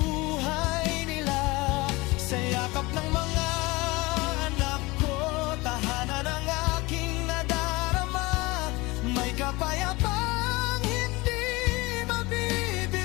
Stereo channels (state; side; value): quieter; right; 22.8 dB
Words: nila. Sa yakap ng mga anak ko, tahanan ng aking nadarama, may kapayapang hindi